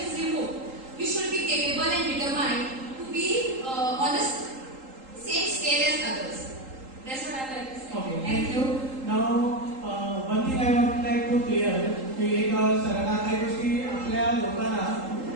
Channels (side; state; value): left; late; 3.8 ms